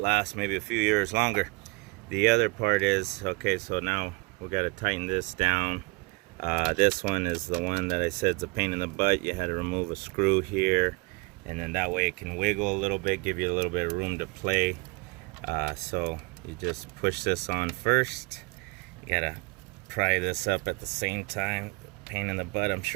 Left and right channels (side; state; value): left; quieter; 26.2 dB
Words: maybe a few years longer. The other part is, okay, so now we got to tighten this down. This one is the one that I said is a pain in the butt. You had to remove a screw here, and then that way it can wiggle a little bit, give you a little bit of room to play. So you just push this on first. You gotta pry this up at the same time. Pain in the butt. I'm